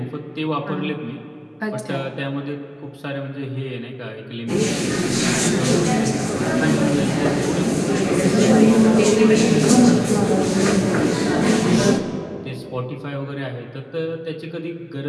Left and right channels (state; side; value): identical; both; correlation 1.00